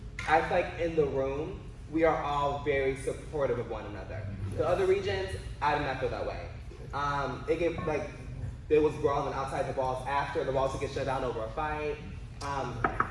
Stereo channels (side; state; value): both; identical; correlation 1.00